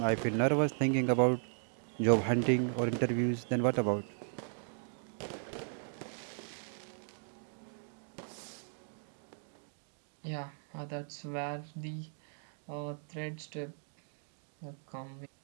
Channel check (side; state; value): left; silent; 53 dB below the other